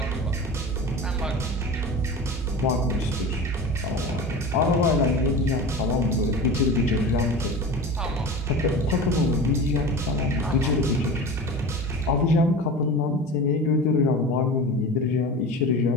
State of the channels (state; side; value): normal; both; correlation 0.32